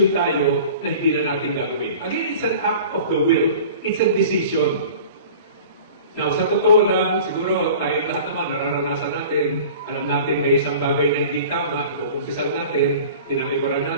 tayo na hindi na natin gagawin. Again, it's an act of the will. It's a decision. Now, sa totoo lang, siguro tayong lahat naman nararanasan natin, alam natin may isang bagay na hindi tama, ikukumpisal natin, tinalikuran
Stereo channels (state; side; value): inverted; both; correlation -0.42